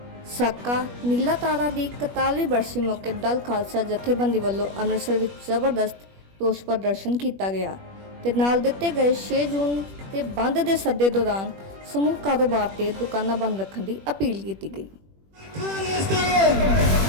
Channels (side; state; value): left; late; 21 ms